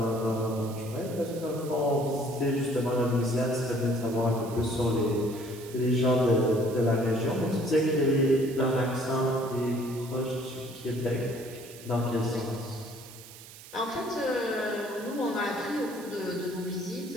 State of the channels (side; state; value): right; noise; hiss, 17 dB below the sound